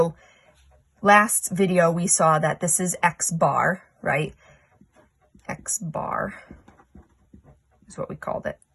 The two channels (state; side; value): identical; both; correlation 1.00